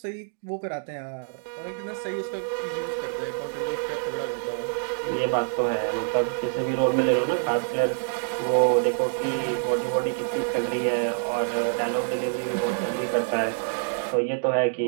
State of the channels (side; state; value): left; silent; digital silence